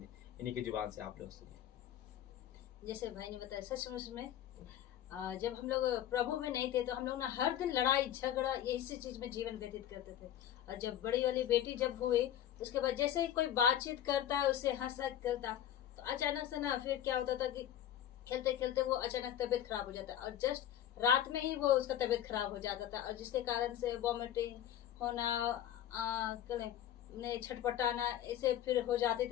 की जुबान से आप लोग सुनिए। जैसे भाई ने बताया, सचमुच में जब हम लोग प्रभु में नहीं थे तो हम लोग ना हर दिन लड़ाई झगड़ा इसी चीज में जीवन व्यतीत करते थे। और जब बड़ी वाली बेटी जब हुई, उसके बाद जैसे ही कोई बातचीत करता है उससे हंसा करता, तो अचानक से ना फिर क्या होता था कि खेलते खेलते वो अचानक तबीयत खराब हो जाता और जस्ट रात में ही वो उसका तबीयत खराब हो जाता था। और जिसके कारण से वॉमिटिंग होना, छटपटाना ऐसे फिर हो जाते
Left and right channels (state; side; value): quieter; right; 11.1 dB